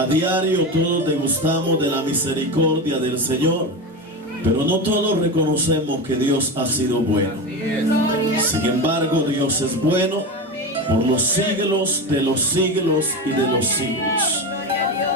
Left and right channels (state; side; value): normal; both; correlation 0.21